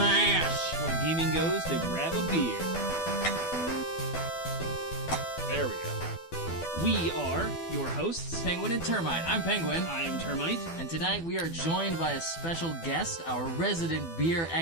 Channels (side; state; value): right; late; 12 ms